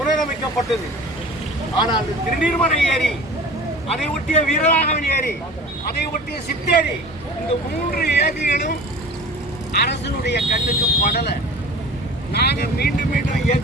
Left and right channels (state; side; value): normal; both; correlation 0.40